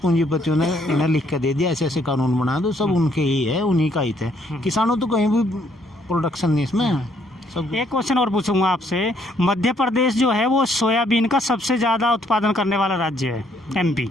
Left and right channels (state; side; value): normal; both; correlation 0.68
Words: पूंजीपतियों ने इन्हें लिख के दे दिया, ऐसे ऐसे कानून बना दो, सब उनके ही है, उन्हीं का हित है। किसानों तो कहीं भी प्रोडक्शन नहीं इसमें। एक क्वेश्चन और पूछूंगा आपसे। मध्य प्रदेश जो है वो सोयाबीन का सबसे ज़्यादा उत्पादन करने वाला राज्य है, एमपी।